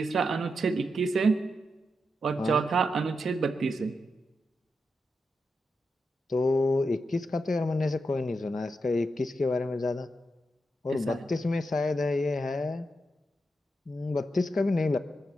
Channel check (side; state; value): both; normal; correlation 0.86